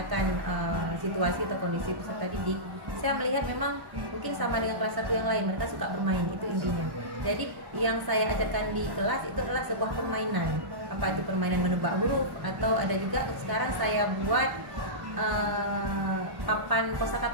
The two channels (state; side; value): late; left; 1.1 ms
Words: situasi atau kondisi peserta didik, saya melihat memang mungkin sama dengan kelas 1 yang lain, mereka suka bermain, itu intinya. Jadi yang saya ajarkan di kelas itu adalah sebuah permainan. Apa itu permainan menebak huruf, atau ada juga sekarang saya buat papan